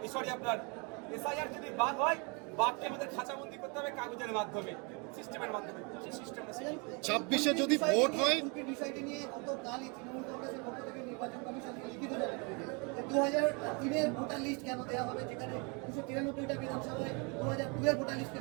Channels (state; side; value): quieter; left; 32.4 dB